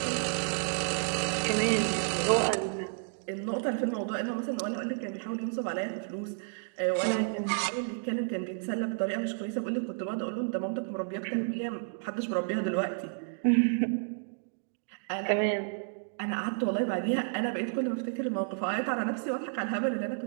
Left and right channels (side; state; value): left; silent; digital silence